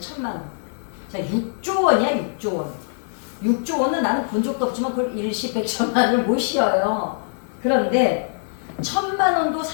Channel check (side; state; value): right; silent; 56 dB below the other